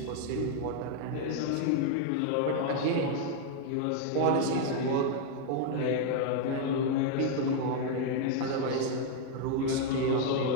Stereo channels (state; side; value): different; both; correlation 0.00